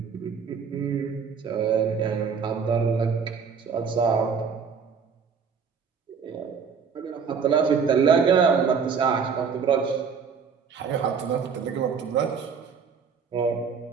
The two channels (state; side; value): quieter; left; 6.2 dB